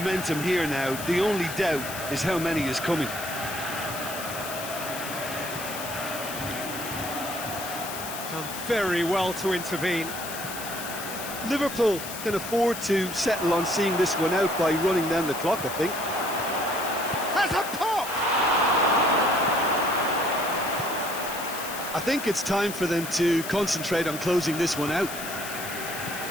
here now. The only doubt is how many is coming. Done very well to intervene. Liverpool can afford to settle on seeing this one out by running down the clock, I think. Has a pop! I think it's time for them to concentrate on closing this one out.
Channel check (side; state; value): left; noise; hiss, 9 dB below the sound